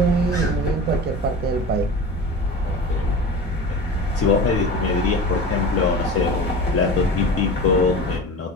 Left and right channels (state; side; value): normal; both; correlation 0.33